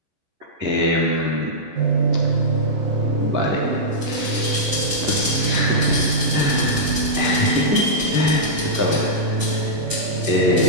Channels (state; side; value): late; left; 11 ms